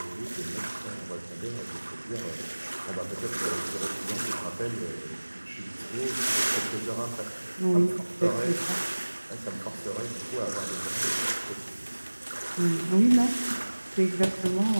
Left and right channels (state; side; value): inverted; both; correlation -1.00